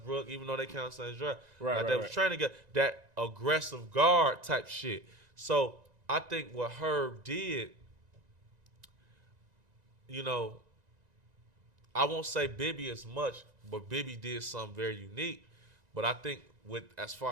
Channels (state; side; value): late; left; 1.9 ms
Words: even though they count the same draft, they was trying to get that aggressive guard type shit. So I think what Herb did, you know, I won't say Bibby as much, but Bibby did something very unique. But I think as